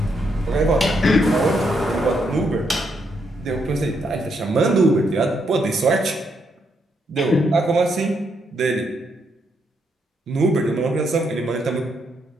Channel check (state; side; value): normal; both; correlation 0.77